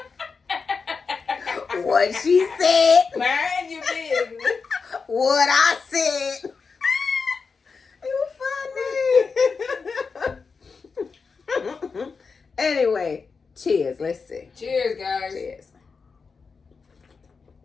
what she said. Mind your business. What I said. You funny. Anyway, cheers. Let's see. Cheers, guys. Cheers.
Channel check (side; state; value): right; quieter; 5.0 dB